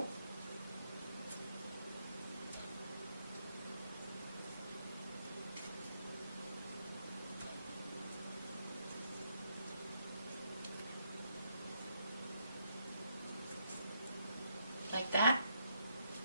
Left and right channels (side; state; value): both; inverted; correlation -0.76